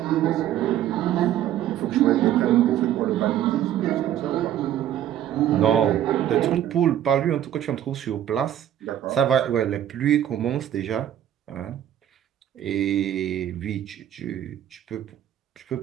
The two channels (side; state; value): left; quieter; 11.3 dB